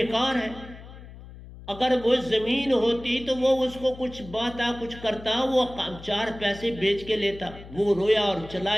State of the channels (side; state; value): left; noise; hum, 16 dB below the sound